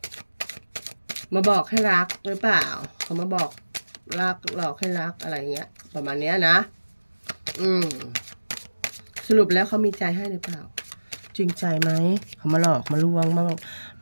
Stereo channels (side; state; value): both; inverted; correlation -1.00